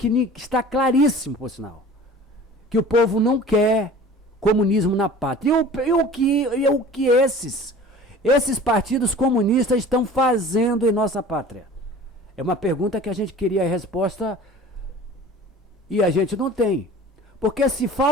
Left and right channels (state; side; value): normal; both; correlation 0.43